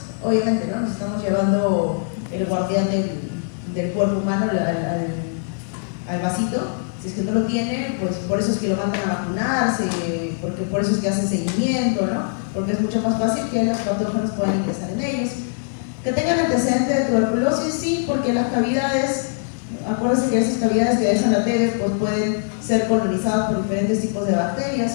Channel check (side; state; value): right; silent; digital silence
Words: obviamente, ¿no? Nos estamos llevando el guardián del cuerpo humano al vasito. Si es que no lo tiene, pues por eso es que lo mandan a vacunarse, porque por eso es que hacen seguimiento, ¿no? Porque es mucho más fácil que los patógenos puedan ingresar en ellos. Que tengan antecedentes de tuberculosis, sí, porque las cavidades, acuérdense que esas cavidades que dejan la TB pues pueden ser colonizadas por diferentes tipos de